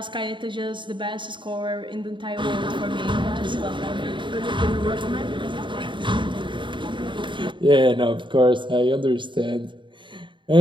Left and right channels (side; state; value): left; late; 0.23 ms